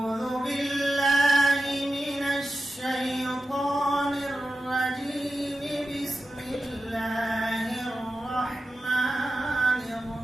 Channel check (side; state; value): both; normal; correlation 0.92